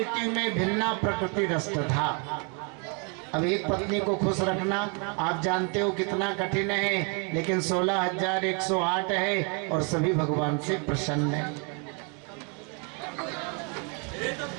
में भिन्ना प्रकृति रष्टधा। अब एक पत्नी को खुश रखना आप जानते हो कितना कठिन है, लेकिन 16,108 है और सभी भगवान से प्रसन्न है।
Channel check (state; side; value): quieter; left; 36.3 dB